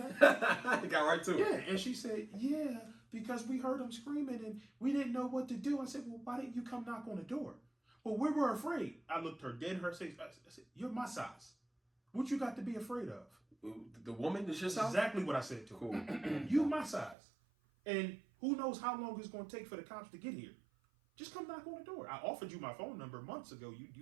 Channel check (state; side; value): drops out; left; at 17.2 s